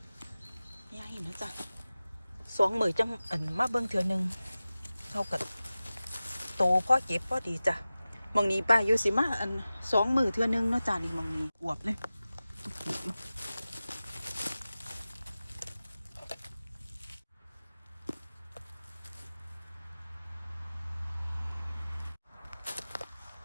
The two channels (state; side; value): inverted; both; correlation -0.96